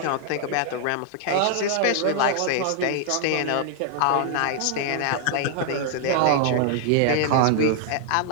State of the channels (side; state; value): both; different; correlation 0.00